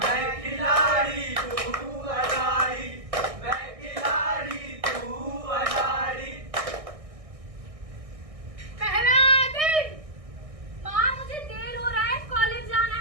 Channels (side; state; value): left; late; 1.6 ms